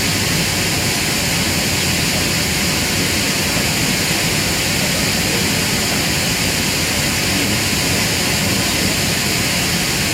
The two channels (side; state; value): both; identical; correlation 1.00